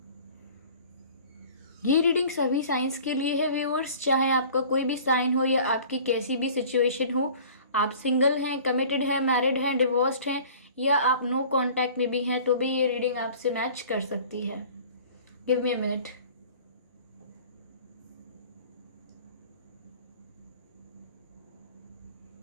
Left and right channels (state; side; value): inverted; both; correlation -0.47